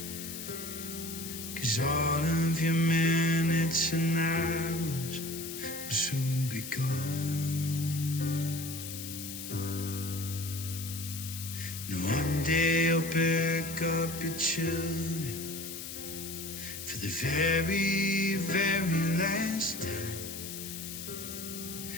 'cause all of your minutes and hours will soon be gone. And one day you'll pick up your children for the very, very last time.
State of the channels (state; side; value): noise; left; hiss, 8 dB below the sound